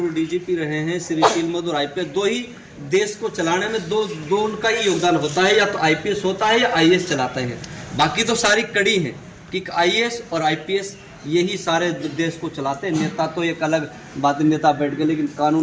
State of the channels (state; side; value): identical; both; correlation 1.00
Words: डीजीपी रहे हैं श्री सील मधुर आईपीएस, 2 ही देश को चलाने में दो उनका ही योगदान होता है, या तो आईपीएस होता है या आईएएस चलाते हैं। बाकी तो सारी कड़ी है कि आईएएस और आईपीएस यही सारे देश को चलाते हैं। नेता तो एक अलग बात, नेता बैठ गए, लेकिन